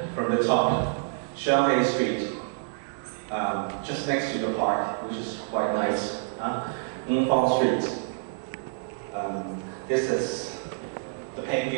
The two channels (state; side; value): silent; left; digital silence